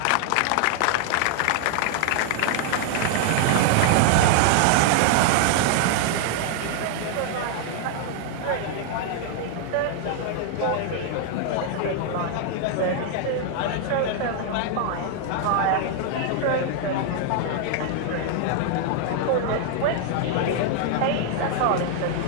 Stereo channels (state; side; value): different; both; correlation 0.00